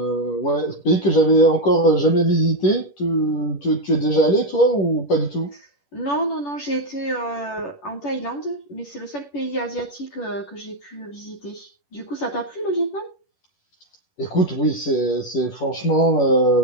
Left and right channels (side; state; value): right; late; 10 ms